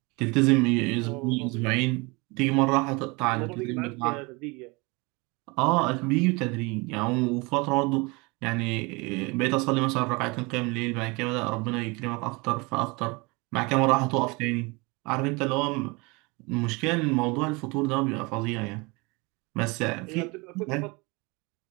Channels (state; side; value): quieter; left; 26.9 dB